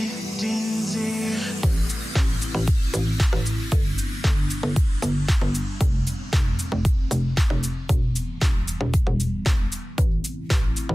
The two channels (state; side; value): normal; both; correlation 0.97